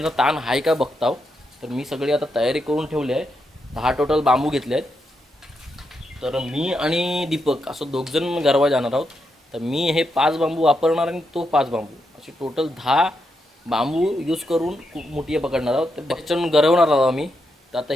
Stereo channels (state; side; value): normal; both; correlation 0.83